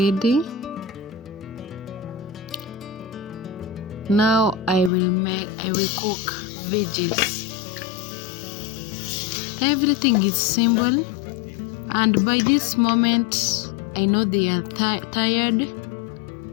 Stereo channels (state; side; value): drops out; right; at 4.9 s